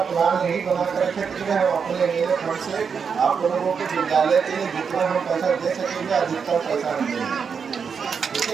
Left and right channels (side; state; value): left; quieter; 6.2 dB